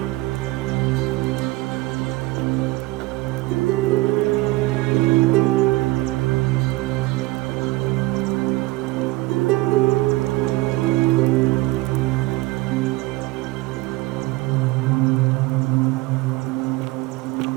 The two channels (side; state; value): left; quieter; 20.9 dB